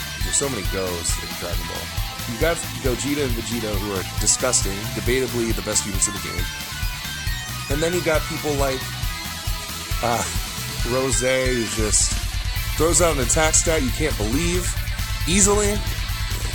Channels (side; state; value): both; identical; correlation 1.00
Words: so many goes in Dragon Ball. You got Gogeta and Vegeta, who are disgusting, debatably the best units of the game. And then you got people like Rose, who just throws out an attack stat you can't believe easily.